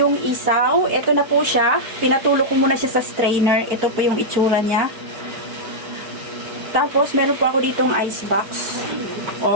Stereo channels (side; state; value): left; late; 4.5 ms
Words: isaw. Ito na po siya. Pinatulog ko muna siya sa strainer. Ito po yung itsura niya. Tapos, meron po ako ditong ice box